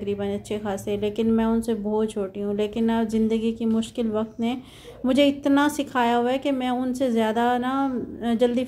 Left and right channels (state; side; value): identical; both; correlation 1.00